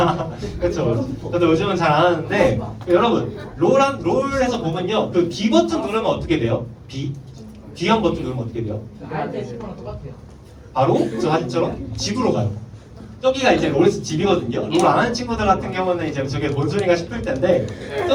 그렇죠. 저도 요즘은 잘 안 하는데 여러분 롤에서 보면요, 그 B 버튼 누르면 어떻게 돼요? B 한 버튼 누르면 어떻게 돼요? 나한테 친구랑 똑같아요. 바로 저 사진처럼 집으로 가요. 저기가 이제 롤에서 집이거든요. 롤 안 하는 친구들 같은 경우는 이제 저게 뭔 소리가 싶을 텐데,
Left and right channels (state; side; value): identical; both; correlation 1.00